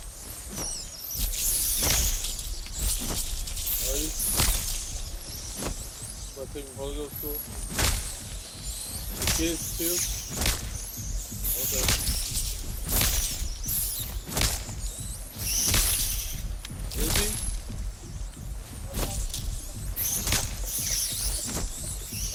Are you? Am I taking Holy Ghost school? The kids too? Okay. Is he?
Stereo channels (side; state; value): both; identical; correlation 1.00